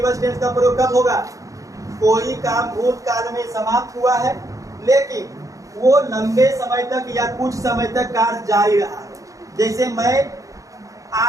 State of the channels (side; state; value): left; late; 0.16 ms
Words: टेंस का प्रयोग कब होगा, कोई काम भूतकाल में समाप्त हुआ है लेकिन वो लंबे समय तक या कुछ समय तक कार्य जारी रहा है। जैसे मैं